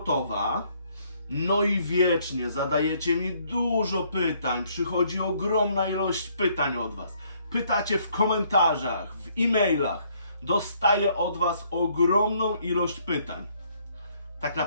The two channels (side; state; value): both; inverted; correlation -0.66